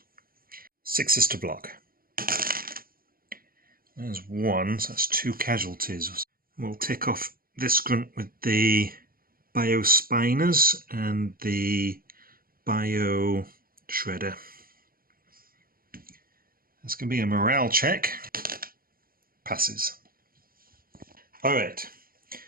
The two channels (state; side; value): late; left; 0.42 ms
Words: 6 is to block. There's 1, so that's 2 casualties. We'll tick off this grunt with the Biospiners and the Bioshredder. That's going to be a morale check. Passes. Alright,